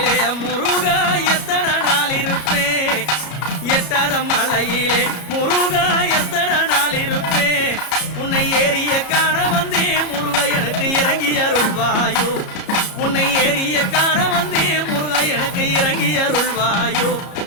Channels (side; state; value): right; late; 33 ms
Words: முருகா எத்தனை நாள் இருப்பேன், எட்டாத மலையிலே முருகா எத்தனை நாள் இருப்பேன். உன்னை ஏறிய காண வந்தே முருகா எனக்கு இறங்கி அருள்வாயோ, உன்னை ஏறிய காண வந்தே முருகா எனக்கு இறங்கி அருள்வாயோ.